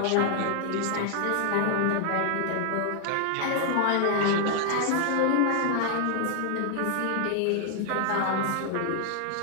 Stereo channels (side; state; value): both; different; correlation 0.00